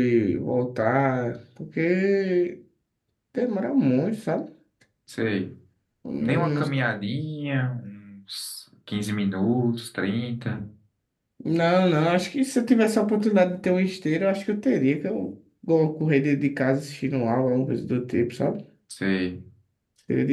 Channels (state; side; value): identical; both; correlation 1.00